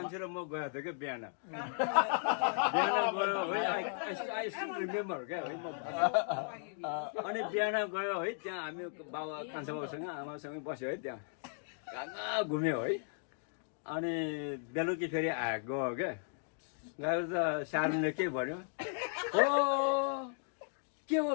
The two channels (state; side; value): silent; right; digital silence